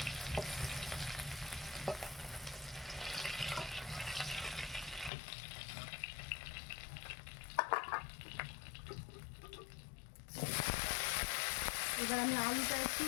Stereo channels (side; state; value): right; drops out; at 5.1 s